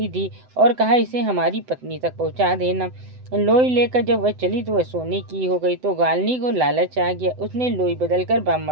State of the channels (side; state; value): left; late; 7.9 ms